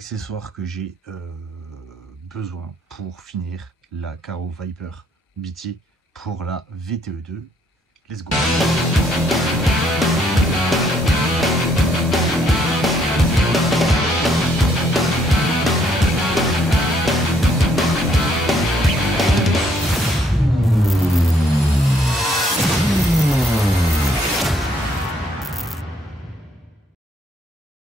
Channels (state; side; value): normal; both; correlation 0.68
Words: que j'ai besoin pour finir la Karo Viper BT pour la VTE2. Let's go.